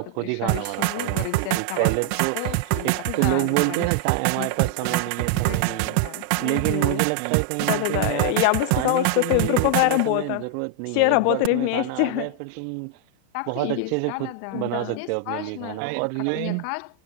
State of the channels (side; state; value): both; different; correlation 0.00